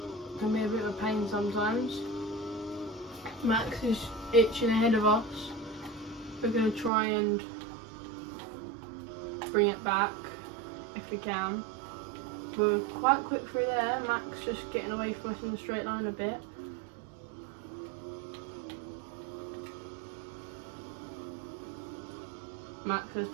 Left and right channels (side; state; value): left; drops out; at 6.9 s